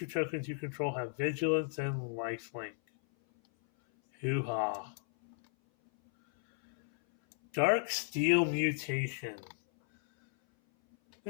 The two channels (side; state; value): right; silent; 55 dB below the other